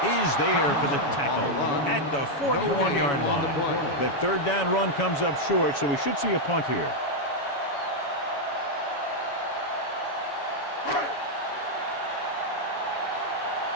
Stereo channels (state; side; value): late; right; 7.1 ms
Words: is there for the tackle at the 41-yard line. That third down run comes up short, so we should see a punt here.